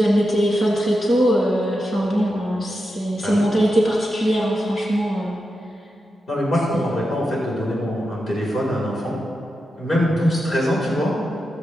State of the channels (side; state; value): both; normal; correlation 0.88